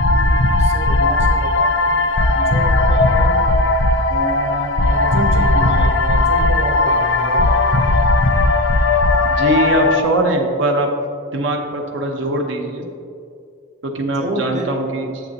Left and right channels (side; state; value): both; normal; correlation 0.21